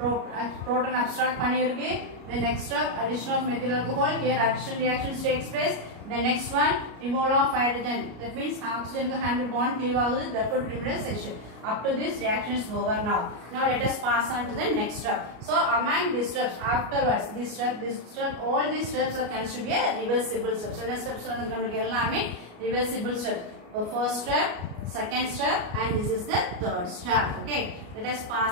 abstract panirke. The next step, addition of methyl alcohol. Here addition reactions takes place. The next one, removal of hydrogen. That means oxygen handle bond cleave agudu, therefore removed as H. Up to this reaction is over now. Now let us pass on to the next step. So among these steps, afterwards, this step, all these steps are considered to be a reversible steps. So next steps are reversible steps. The first step, second step, and this is the third step. Okay, let us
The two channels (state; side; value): late; left; 33 ms